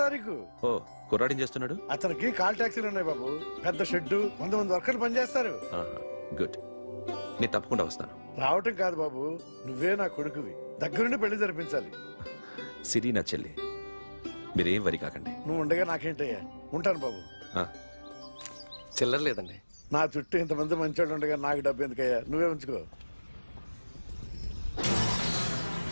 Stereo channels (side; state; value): both; inverted; correlation -1.00